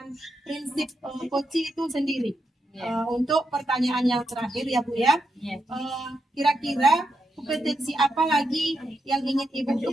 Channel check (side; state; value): both; normal; correlation 0.84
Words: prinsip coaching itu sendiri. Untuk pertanyaan yang terakhir ya Bu ya, kira-kira kompetensi apa lagi yang ingin Ibu